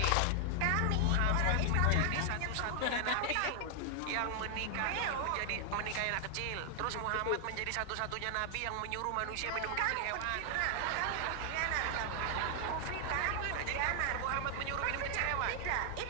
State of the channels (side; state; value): both; different; correlation 0.00